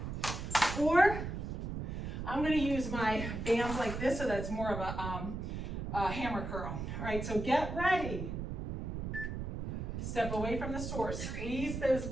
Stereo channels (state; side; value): noise; right; rumble, 4 dB below the sound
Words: or I'm gonna use my bands like this, so that's more of a hammer curl. All right, so get ready. Step away from the source, squeeze those